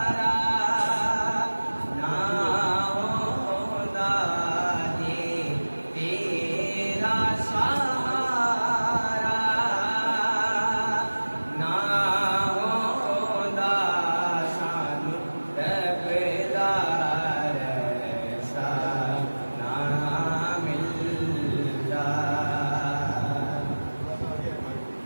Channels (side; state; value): both; inverted; correlation -1.00